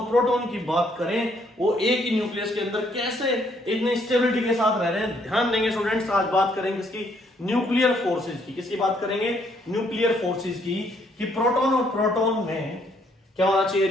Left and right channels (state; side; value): normal; both; correlation 0.69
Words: प्रोटॉन की बात करें, वो एक ही न्यूक्लियस के अंदर कैसे इतनी स्टेबिलिटी के साथ रह रहे हैं। ध्यान देंगे स्टूडेंट्स, आज बात करेंगे इसकी न्यूक्लियर फोर्सेज की। किसकी बात करेंगे? न्यूक्लियर फोर्सेज की, कि प्रोटॉन और प्रोटॉन में क्या होना चाहिए?